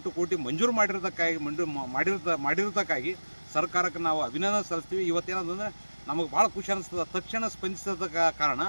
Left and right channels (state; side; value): inverted; both; correlation -1.00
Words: ಕೋಟಿ ಮಂಜೂರು ಮಾಡಿರೋದಕ್ಕಾಗಿ ಸರ್ಕಾರಕ್ಕೆ ನಾವು ಅಭಿನಂದನೆ ಸಲ್ಲಿಸ್ತೀವಿ. ಇವತ್ತೇನಂದ್ರೆ ನಮಗೆ ಭಾಳ ಖುಷಿ ಅನಿಸ್ತದೆ. ತಕ್ಷಣ ಸ್ಪಂದಿಸದ ಕಾರಣ